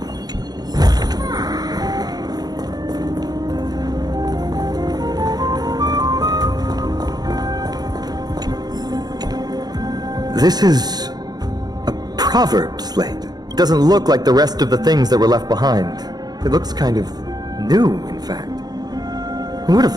This is a proverb slate. It doesn't look like the rest of the things that were left behind. It looks kind of new, in fact. Who would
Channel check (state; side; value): late; left; 0.19 ms